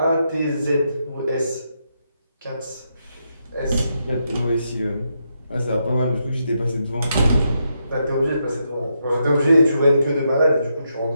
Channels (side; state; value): both; inverted; correlation -0.82